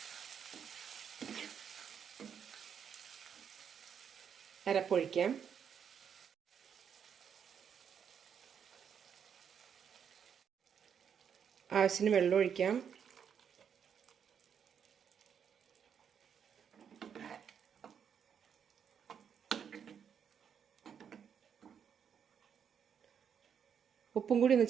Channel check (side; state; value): left; quieter; 7.7 dB